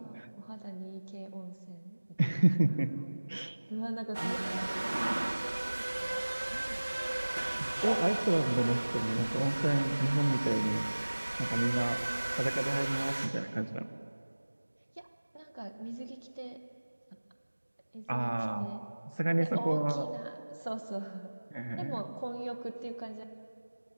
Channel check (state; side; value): inverted; both; correlation -1.00